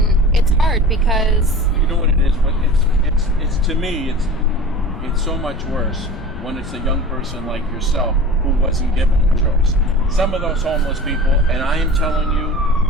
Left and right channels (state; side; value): noise; left; rumble, 11 dB below the sound